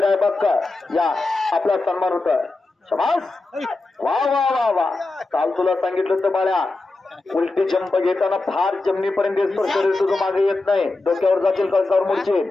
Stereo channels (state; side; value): quieter; right; 3.3 dB